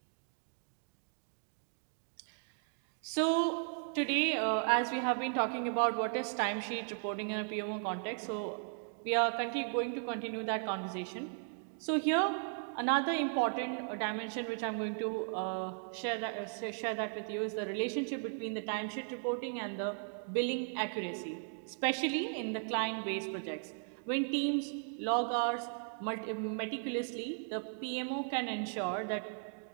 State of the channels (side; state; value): left; silent; 53 dB below the other